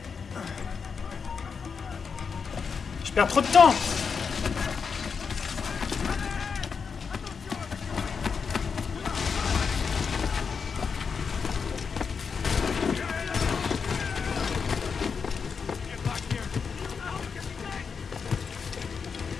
Je perds trop de temps.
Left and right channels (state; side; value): quieter; right; 5.8 dB